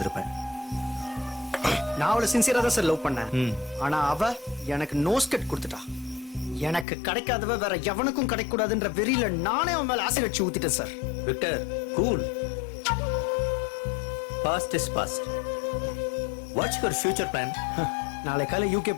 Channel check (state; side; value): drops out; right; at 6.9 s